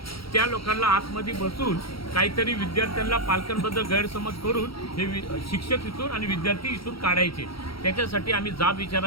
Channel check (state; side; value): late; right; 0.75 ms